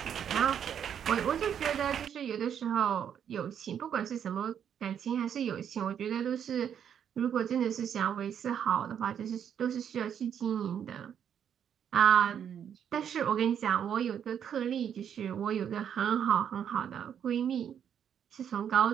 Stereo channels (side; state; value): left; quieter; 8.7 dB